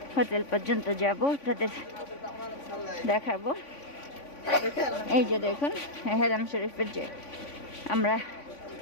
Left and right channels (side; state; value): right; late; 3.5 ms